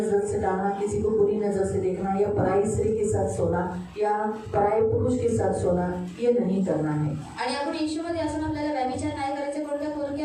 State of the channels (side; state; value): both; identical; correlation 1.00